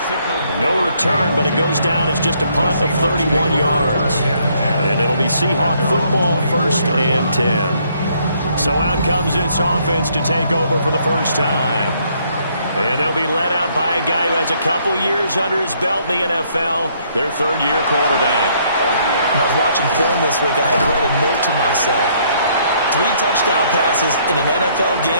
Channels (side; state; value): both; inverted; correlation -0.67